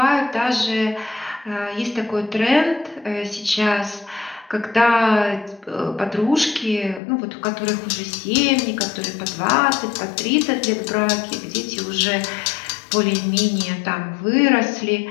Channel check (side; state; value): right; drops out; at 7.0 s